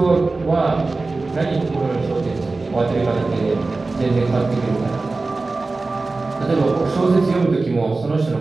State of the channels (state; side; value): quieter; left; 3.6 dB